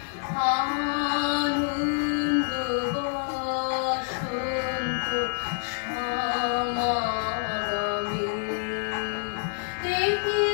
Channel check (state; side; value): silent; right; digital silence